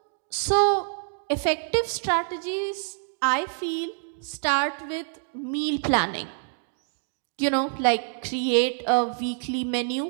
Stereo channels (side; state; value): left; silent; 61 dB below the other